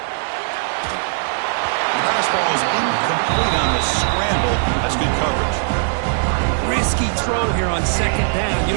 The pass ball is incomplete on the scramble. That's good coverage. Risky throw here on 2nd down. You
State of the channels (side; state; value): left; silent; 66 dB below the other